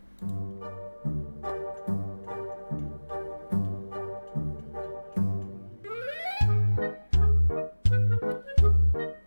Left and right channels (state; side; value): inverted; both; correlation -1.00